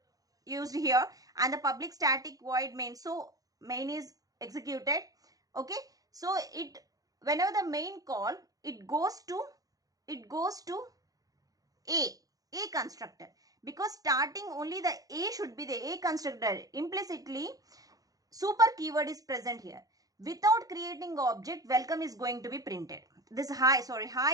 used here, and the public static void main, so main is executed. Okay, so it, whenever the main call, it goes to A constructor, because starting only the A should be the A constructor. Implicitly super keyword is present here. Without creating object, welcome is going to be printed. This hi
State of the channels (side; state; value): left; late; 0.17 ms